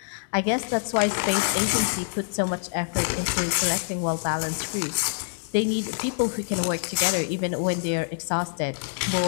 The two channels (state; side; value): silent; right; digital silence